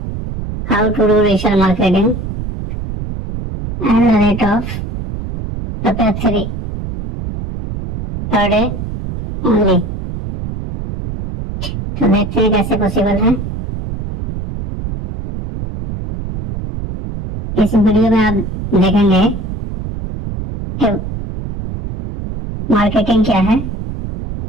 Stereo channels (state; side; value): noise; right; rumble, 7 dB below the sound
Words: how to do digital marketing at the rate of ₹3 per day only. तो देखते हैं कैसे पॉसिबल है। इस वीडियो में आप देखेंगे कि मार्केटिंग क्या है,